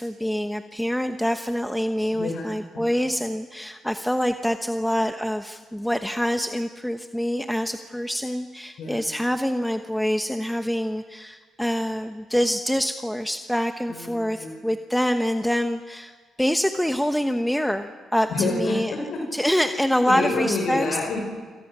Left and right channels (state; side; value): normal; both; correlation 0.96